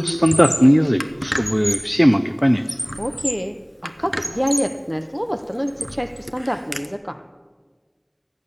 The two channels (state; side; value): identical; both; correlation 1.00